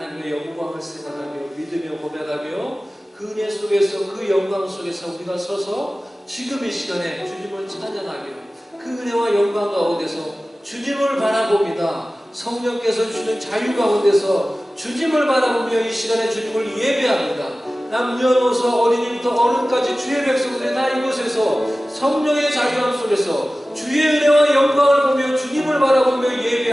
영광을 생각하며 믿으며 고백하며 그 은혜 속에서 그 영광 속에서 우리가 서서 지금 이 시간에 주님을 찬양하며 그 은혜와 영광 가운데서 주님을 바라봅니다. 성령께서 주시는 자유 가운데서 주님을 바라보며 이 시간에 주님을 예배합니다. 남녀노소 어린이부터 어른까지 주의 백성들이 다 이곳에서 성령의 자유함 속에서 주의 은혜와 영광을 보며 주님을 바라보며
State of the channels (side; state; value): both; normal; correlation 0.96